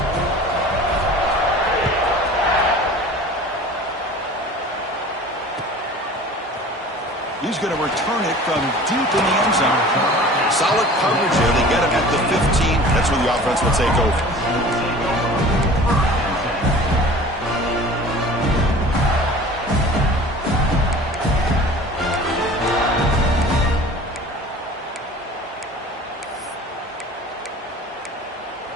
He's going to return it from deep in the end zone. Solid coverage there. They get him at the 15. That's where the offense will take over.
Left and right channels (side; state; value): both; normal; correlation 0.43